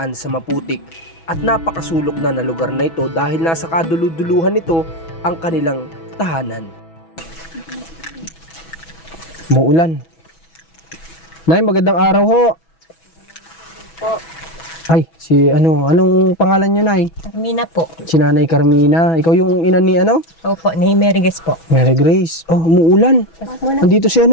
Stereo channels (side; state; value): right; late; 6.1 ms